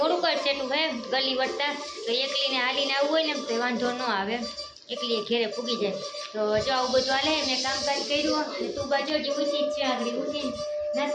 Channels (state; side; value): identical; both; correlation 1.00